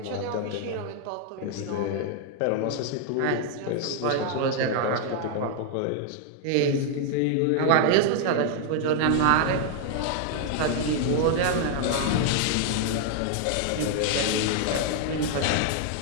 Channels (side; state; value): both; different; correlation 0.00